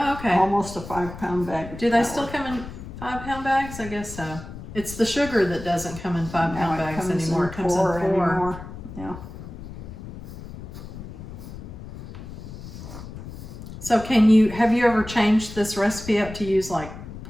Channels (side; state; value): left; noise; rumble, 12 dB below the sound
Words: okay. Almost a 5-pound bag. Do they still come in 5-pound bags? I guess so. It's the sugar that doesn't come in 5-pound bags anymore. It comes in 4. Anymore. Yeah. So have you ever changed this recipe up to use like